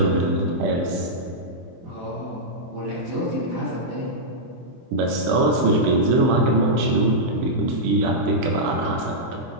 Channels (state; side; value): late; left; 24 ms